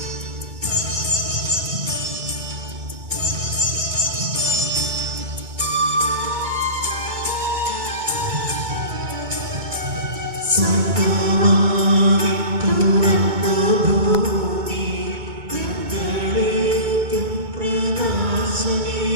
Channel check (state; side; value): late; left; 2.2 ms